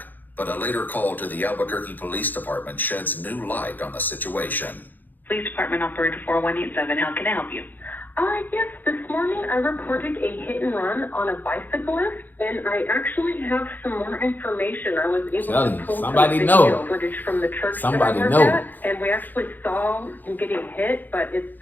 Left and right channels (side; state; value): right; late; 0.087 ms